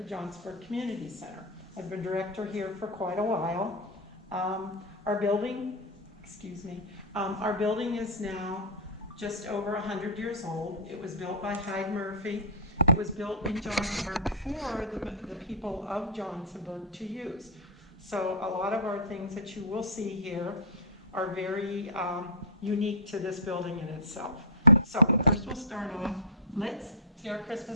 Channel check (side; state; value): both; normal; correlation -0.10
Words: Johnsonburg Community Center. I've been director here for quite a while. Our building is now just over 100 years old. It was built by Hyde Murphy. It was built in Johnsonburg for the people of Johnsonburg to use. So a lot of our things that you will see here are very unique to this building in itself. So first we'll start off. Let's see our